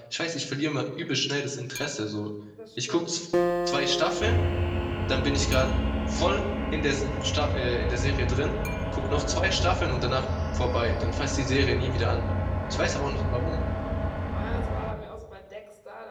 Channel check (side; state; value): both; identical; correlation 1.00